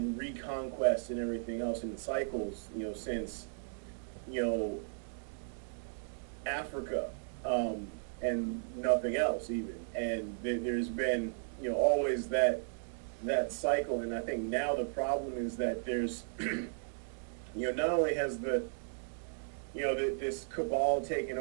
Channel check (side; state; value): left; silent; digital silence